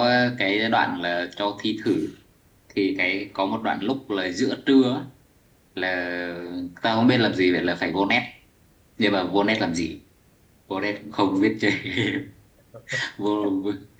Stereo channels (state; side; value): identical; both; correlation 1.00